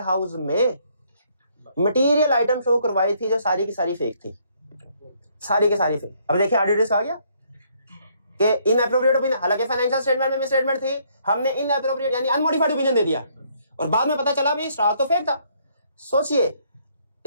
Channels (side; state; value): both; inverted; correlation -0.67